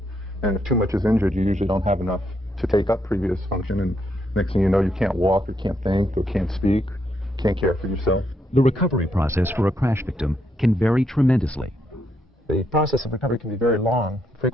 And if too much is injured, you usually don't have enough to take up previous function. And next thing you know, you can't walk, or can't think, or can't speak, can't care for yourself. The recovery process for a crash victim can vary tremendously. The process of recovery can be very long,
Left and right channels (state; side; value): normal; both; correlation 0.77